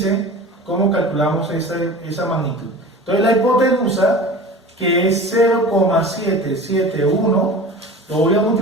cómo calculamos esa magnitud. Entonces la hipotenusa, que es 0,771, lo voy a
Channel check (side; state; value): both; normal; correlation 0.37